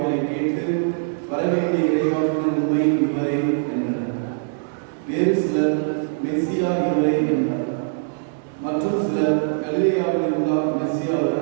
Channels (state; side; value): silent; left; 64 dB below the other